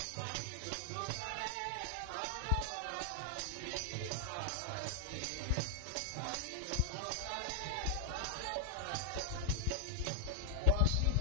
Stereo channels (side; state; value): both; different; correlation 0.00